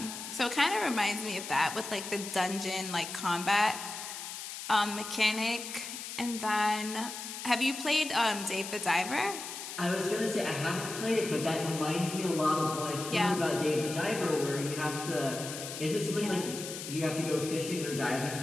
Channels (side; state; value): left; noise; hiss, 8 dB below the sound